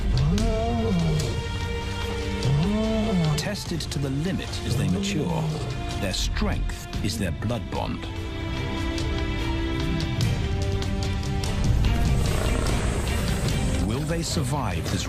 Tested to the limit as they mature, their strength is their blood bond. Will they survive this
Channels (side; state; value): both; identical; correlation 1.00